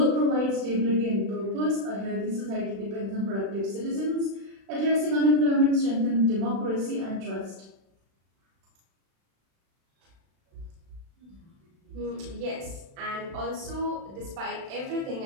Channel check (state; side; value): late; left; 36 ms